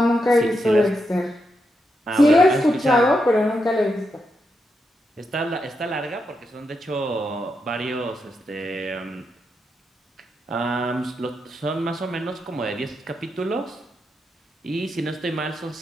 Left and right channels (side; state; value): both; normal; correlation 0.84